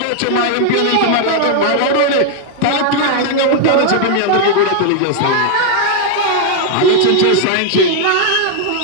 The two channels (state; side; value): different; both; correlation 0.00